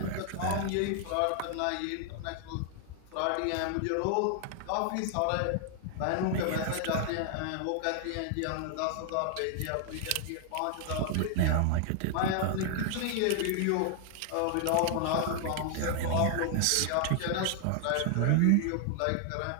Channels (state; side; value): different; both; correlation 0.00